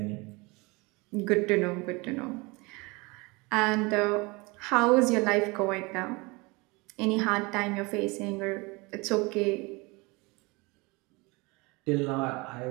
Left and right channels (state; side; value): quieter; left; 25.8 dB